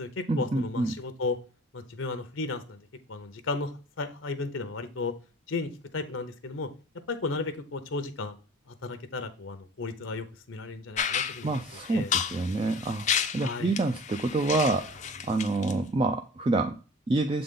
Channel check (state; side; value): normal; both; correlation 0.43